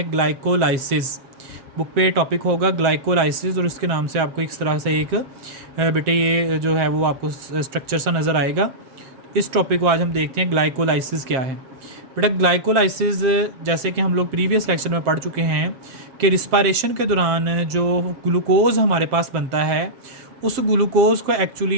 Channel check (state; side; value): late; left; 7.6 ms